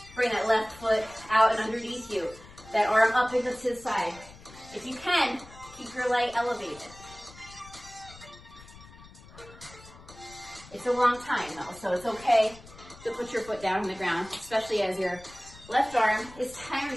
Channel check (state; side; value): noise; left; rumble, 20 dB below the sound